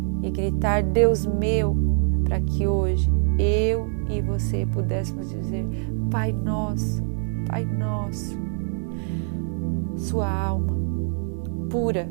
e gritar, Deus meu, para que hoje eu e você pudéssemos dizer, Pai nosso, Pai nosso. Sua alma pura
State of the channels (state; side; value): silent; left; 62 dB below the other